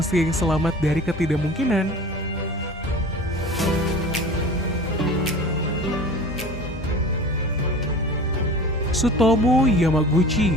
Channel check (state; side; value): normal; both; correlation 0.38